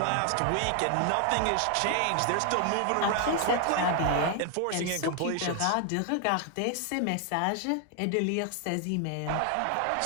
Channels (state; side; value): different; both; correlation 0.00